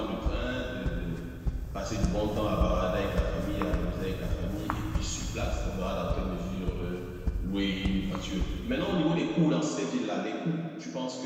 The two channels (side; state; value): both; identical; correlation 1.00